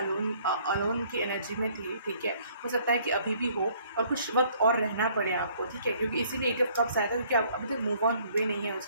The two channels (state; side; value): inverted; both; correlation -0.61